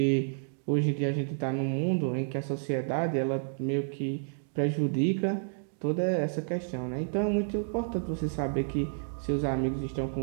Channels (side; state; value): left; silent; digital silence